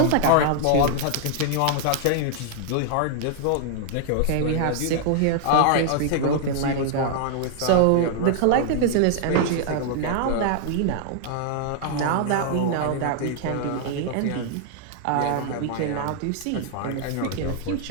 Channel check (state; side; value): different; both; correlation 0.00